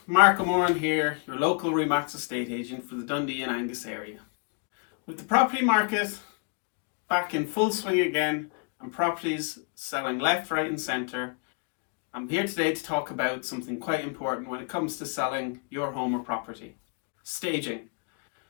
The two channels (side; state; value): right; quieter; 38.6 dB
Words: Mark O'Moran here, your local Remax estate agent for the Dundee and Angus area. With the property market back in full swing again and properties selling left, right and centre, I'm here today to talk about something quite important when it comes to selling your home or property. Staging.